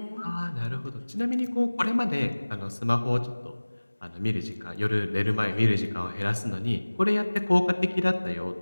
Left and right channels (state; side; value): inverted; both; correlation -1.00